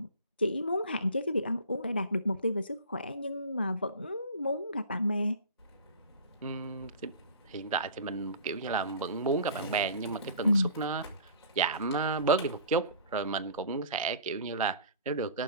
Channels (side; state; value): both; inverted; correlation -0.42